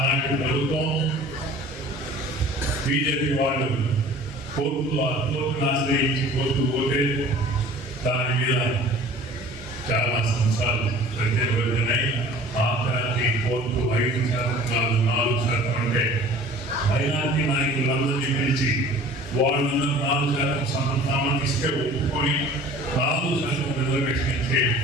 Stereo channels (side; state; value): both; normal; correlation 0.46